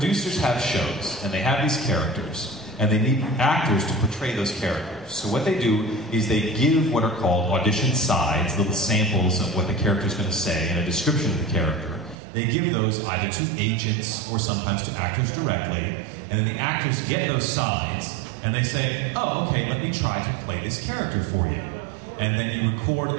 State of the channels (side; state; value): left; drops out; at 12.2 s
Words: have shows, and they have these characters, and they need actors to portray those characters. So what they do is they give what are called audition sides, little samples of what the character is going to say and a description of the character. They give those either to agents or sometimes to actors directly, and then the actors get those sides, and they say, "Oh, okay, let me try to play this character for you." And then you record